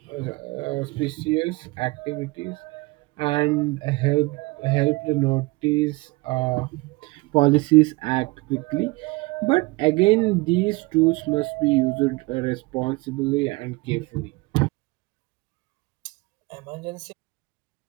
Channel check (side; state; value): left; quieter; 23.7 dB